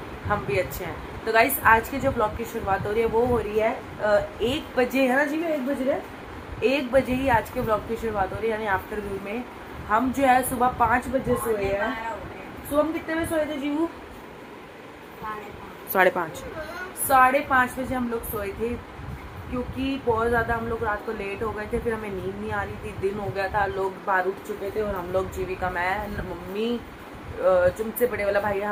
हम भी अच्छे हैं। तो गाइस, आज के जो ब्लॉग की शुरुआत हो रही है वो हो रही है 1 बजे, है ना जी। मैं 1 बज रहा है, 1 बजे ही आज के ब्लॉग की शुरुआत हो रही है, यानी आफ्टरनून में। हम जो है सुबह 5 बजे सोए हैं। सुबह हम कितने बजे सोए थे जीवू? 5:30। 5:30 बजे हम लोग सोए थे, क्योंकि बहुत ज़्यादा हम लोग रात को लेट हो गए थे। फिर हमें नींद नहीं आ रही थी, दिन हो गया था, लोग बाहर उठ चुके थे और हम लोग जीविका, मैं, मम्मी, तुमसे बड़े वाला भाई,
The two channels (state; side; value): identical; both; correlation 1.00